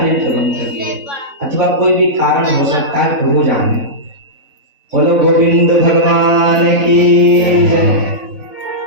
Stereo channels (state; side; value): late; left; 3.6 ms